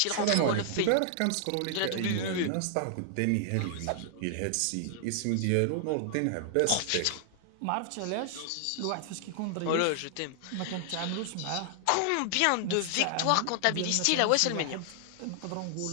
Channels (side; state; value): both; different; correlation 0.00